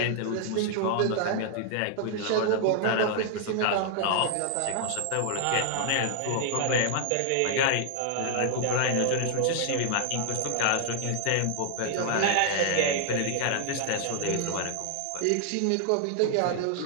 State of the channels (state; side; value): different; both; correlation 0.00